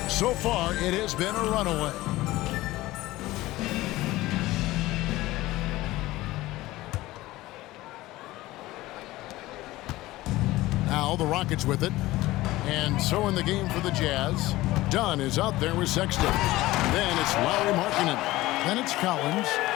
So far, it has been a runaway. Now the Rockets with it. And so in the game for the Jazz, Dunn is out there with Sexton. Then it's Lauri Markkanen. Then it's Collins.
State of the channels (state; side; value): quieter; right; 17.9 dB